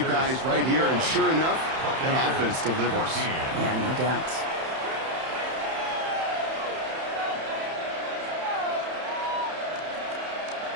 right here. And sure enough, that offense delivers. Yeah, no doubt.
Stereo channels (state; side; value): late; left; 31 ms